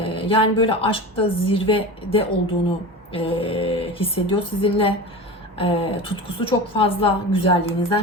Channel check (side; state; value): both; normal; correlation 0.30